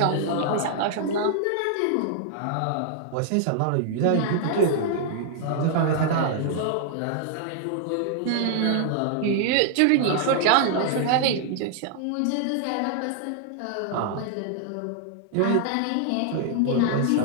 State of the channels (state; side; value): different; both; correlation 0.00